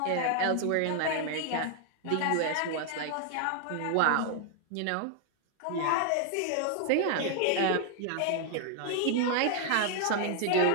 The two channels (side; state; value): both; different; correlation 0.00